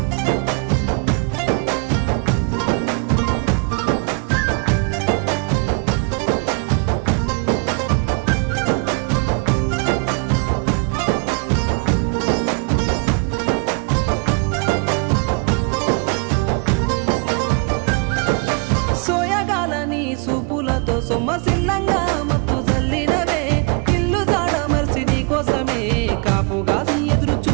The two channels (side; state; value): left; quieter; 32.0 dB